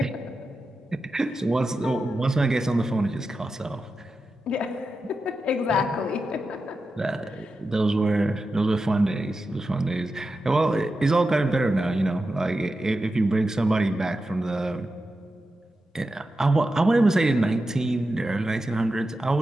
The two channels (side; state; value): both; normal; correlation 0.91